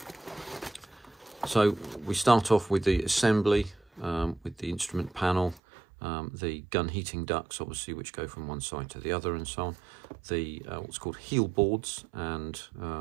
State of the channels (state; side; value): drops out; left; at 5.6 s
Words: So we start off with the assembly, with the instrument panel, the gun heating ducts, obviously, which go from one side to the other, and so on. The what's called heel boards, and